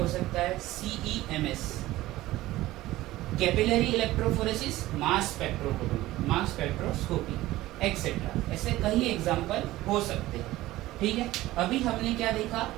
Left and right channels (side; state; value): left; quieter; 16.8 dB